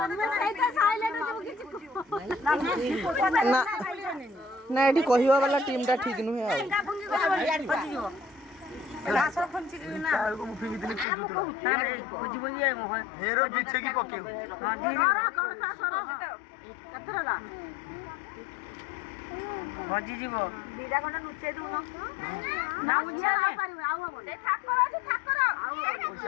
सही साइलेंट हो किछि ना ना एठी कहिवा वाला टीम टा ठीक नुहे आ रासर फंची ना को मुफी कितनी पूजू तो बुझी बुझी है मोह हेरो पीछे की पके हां धीरे कौन सा सरो कतरा ला ହଜି ଯିବ। ଦିଟା ଖଣ୍ଡ ଲୁଚେଇ ଦଉନ ନା ଉଞ୍ଚିଆ ଯାଇ ପାରିବ ଆଉ ହବନି ସେ ଠାକର ଅଛି ଠାକର ଆଉ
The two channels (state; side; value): drops out; right; at 11.1 s